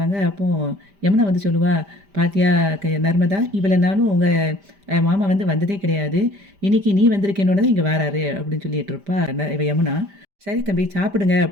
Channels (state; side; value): late; left; 5.0 ms